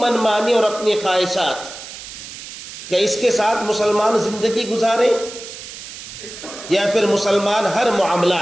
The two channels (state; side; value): noise; right; hiss, 12 dB below the sound